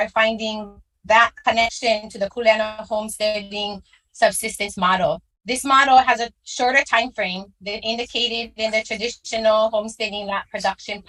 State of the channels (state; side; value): identical; both; correlation 1.00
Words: finding that connection to the kuleana homesteading subsistence model. This model has a shorter time frame than indicated in the traditional homesteading lot production